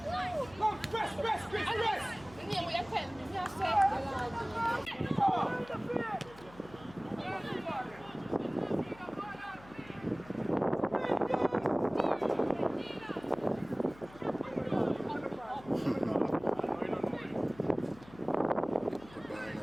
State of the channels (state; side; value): noise; left; hum, 21 dB below the sound